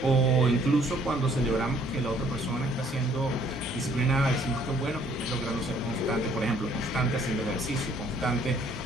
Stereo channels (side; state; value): both; normal; correlation 0.62